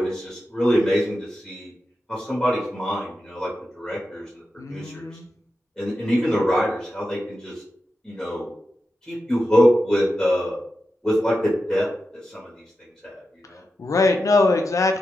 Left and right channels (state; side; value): normal; both; correlation 0.90